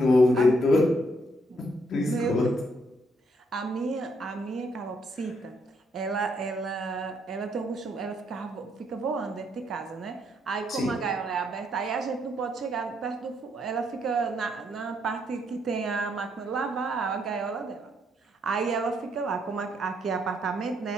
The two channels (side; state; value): both; normal; correlation 0.73